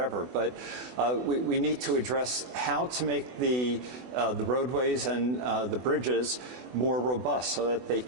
But we need to address how to make the roadways and the bridges more robust, so that they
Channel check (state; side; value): late; left; 21 ms